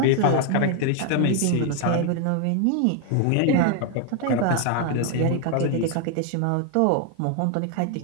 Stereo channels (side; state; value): both; different; correlation 0.00